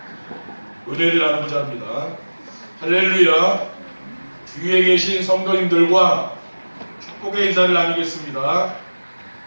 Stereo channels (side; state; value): both; inverted; correlation -1.00